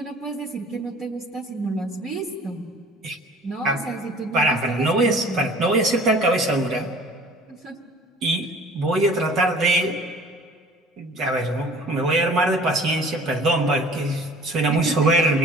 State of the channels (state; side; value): normal; both; correlation 0.49